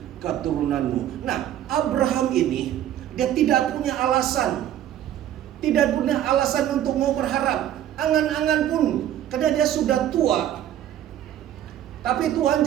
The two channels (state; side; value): quieter; left; 11.5 dB